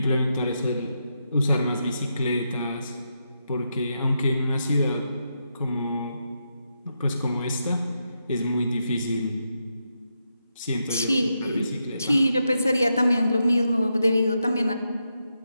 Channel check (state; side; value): inverted; both; correlation -0.84